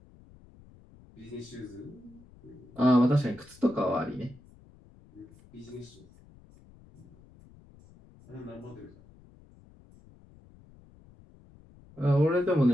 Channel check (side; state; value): left; noise; rumble, 24 dB below the sound